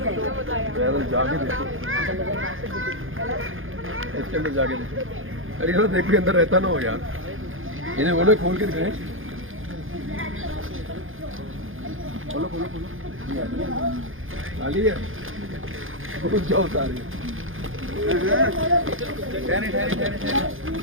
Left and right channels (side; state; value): left; late; 0.59 ms